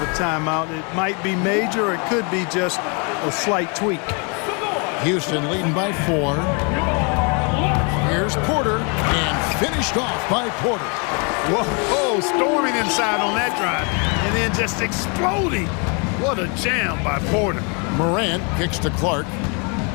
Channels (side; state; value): right; quieter; 34.8 dB